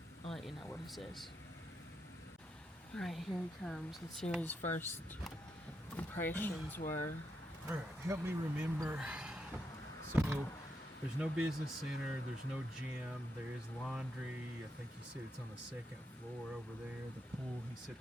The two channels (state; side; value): normal; both; correlation 0.82